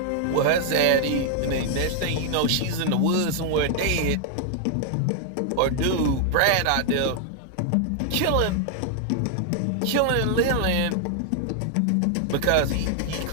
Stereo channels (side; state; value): both; different; correlation 0.00